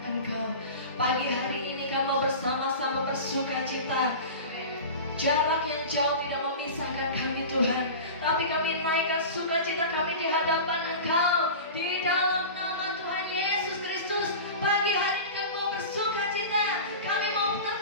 Engkau. Pagi hari ini kami mau bersama-sama bersuka cita. Jarak yang jauh tidak memisahkan kami Tuhan, tapi kami naikkan sukacita kami di hadapan Engkau. Di dalam nama Tuhan Yesus Kristus, pagi hari ini kami mau bersuka cita. Kami mau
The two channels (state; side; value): inverted; both; correlation -0.32